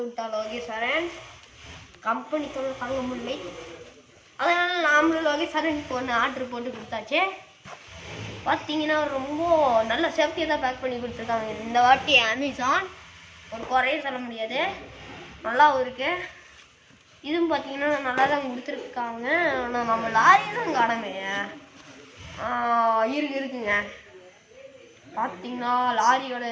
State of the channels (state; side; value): identical; both; correlation 1.00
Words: விட்டா லோகேஸ்வரன். கம்பெனி தொல்லை தாங்க முடியலை. அதனால் நாமளும் லோகேஸ்வரனுக்கு ஒன்று ஆர்டர் போட்டு கொடுத்தாச்சு. பார்த்தீங்கன்னா ரொம்ப நல்ல சேஃப்டியாக தான் பேக் பண்ணி கொடுத்துருக்காங்க இந்த வாட்டி அமேசான். ஒரு குறையும் சொல்ல முடியாது, நல்லாவும் இருக்கு. இதுவும் பார்த்தீங்கன்னா நல்லா தான் கொடுத்துருக்காங்க. ஆனால் நம்ம லாரியும் காணமே இருக்குங்க. பார்த்தீங்கன்னா லாரியோட